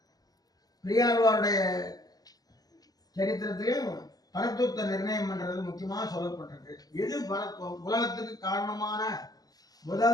பெரியாழ்வாருடைய சரித்திரத்திலையும் பரத்துவத்தை நிர்ணயம் பண்றது முக்கியமாக சொல்லப்பட்டிருக்கு. எது பரத்துவம்? உலகத்துக்கு காரணமான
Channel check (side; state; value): right; late; 0.18 ms